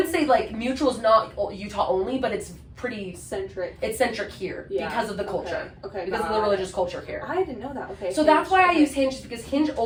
say, like, Mutual's not Utah only, but it's pretty centric. It's centric here because of the culture. Okay. Because of the religious culture here. I didn't know that. Okay. So that's why I use Hinge, because Hinge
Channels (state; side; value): identical; both; correlation 1.00